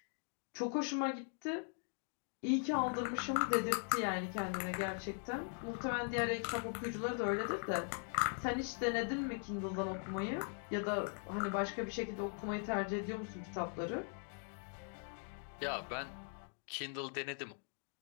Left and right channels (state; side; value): silent; right; 51 dB below the other